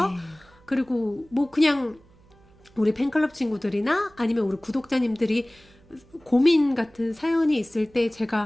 네. 그리고 그냥 우리 팬클럽 친구들이나 아니면 우리 구독자님들이 고민 같은 사연이 있을 때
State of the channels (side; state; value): right; noise; hum, 28 dB below the sound